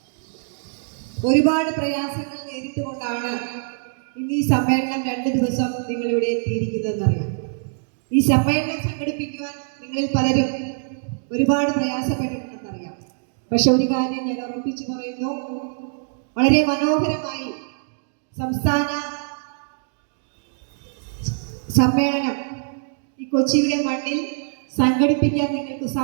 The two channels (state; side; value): silent; left; digital silence